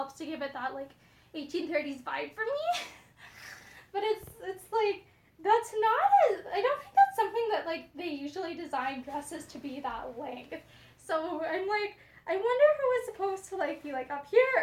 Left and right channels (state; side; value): identical; both; correlation 1.00